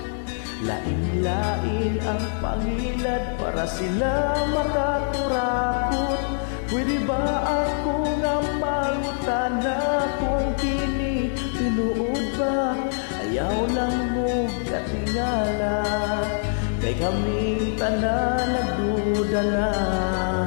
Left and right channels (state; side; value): silent; right; digital silence